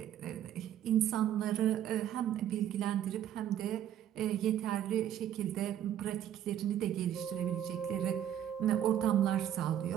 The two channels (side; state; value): left; quieter; 10.8 dB